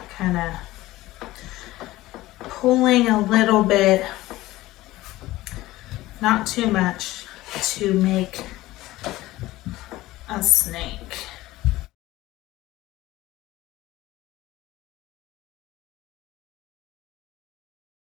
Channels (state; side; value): quieter; right; 17.3 dB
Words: kind of pulling a little bit. Not too much to make a snake.